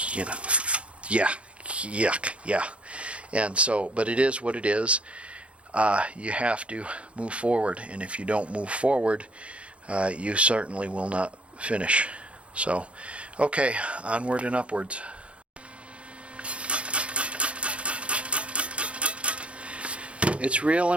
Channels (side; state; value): left; late; 0.061 ms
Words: know, yeah, yuck, yeah. And so, but it is what it is. You have to move forward, and if you don't move forward, you certainly will not finish. So, okay, onward and upwards. It's real